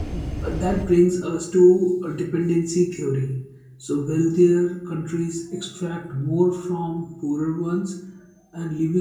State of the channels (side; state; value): both; identical; correlation 1.00